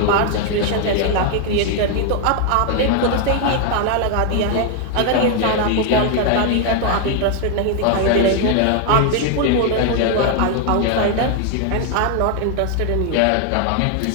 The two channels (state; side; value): different; both; correlation 0.00